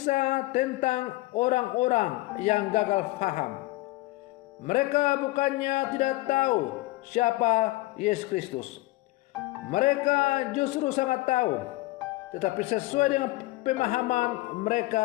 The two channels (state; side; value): quieter; right; 19.9 dB